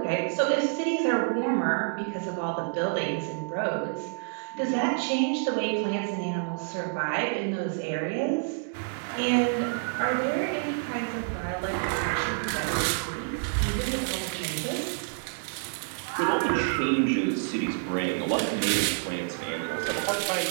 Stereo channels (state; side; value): silent; left; digital silence